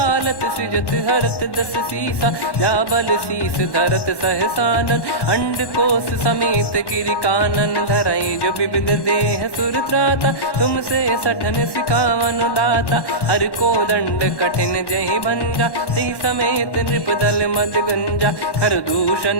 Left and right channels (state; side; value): late; right; 1.1 ms